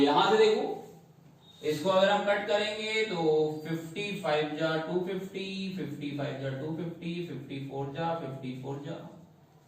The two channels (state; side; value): identical; both; correlation 1.00